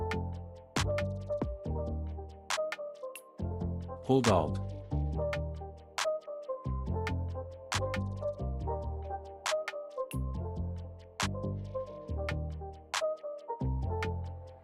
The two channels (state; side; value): identical; both; correlation 1.00